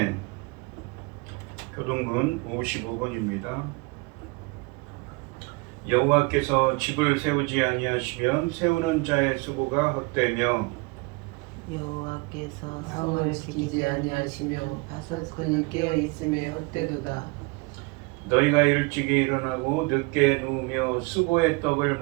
교동문 55번입니다. 여호와께서 집을 세우지 아니하시면 세우는 자의 수고가 헛되며 여호와께서 성을 지키지 아니하시면 바석근이 깨어 있음에 헛되도다. 너희가 일찍이 일어나고 늦게 누우며 수고의 떡을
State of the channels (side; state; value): left; quieter; 28.0 dB